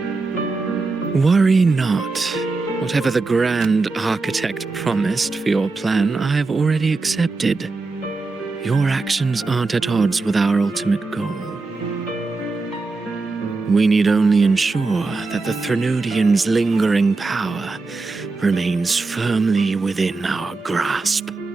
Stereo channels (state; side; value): quieter; left; 3.8 dB